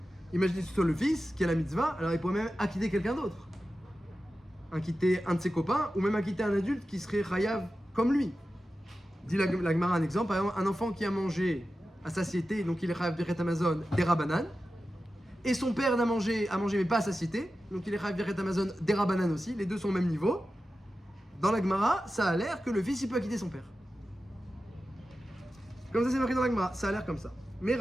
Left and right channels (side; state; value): both; normal; correlation 0.93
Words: imaginez que ce soit le fils qui a la mitzvah, alors il pourrait même acquitter quelqu'un d'autre, acquitter un de ses copains, ou même acquitter un adulte qui serait chayav comme lui. Dit la Gemara un exemple, par exemple, un enfant qui a mangé à satiété, donc il est chayav Birkat Hamazon des rabanan, et son père a mangé mais pas à satiété, donc il est chayav Birkat Hamazon des rabanan aussi, les deux sont au même niveau. Dans la Gemara, ça a l'air que le fils il peut acquitter son père. Comme ça, c'est marqué dans la Gemara, ça a l'air comme ça. Mais